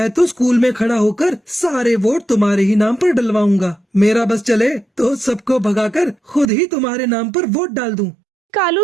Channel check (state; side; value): drops out; left; at 6.5 s